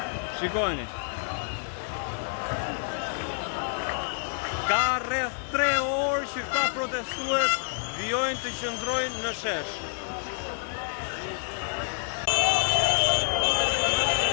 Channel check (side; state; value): right; silent; digital silence